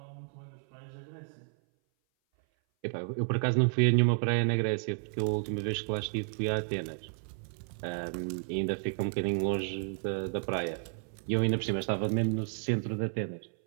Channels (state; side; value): silent; left; 57 dB below the other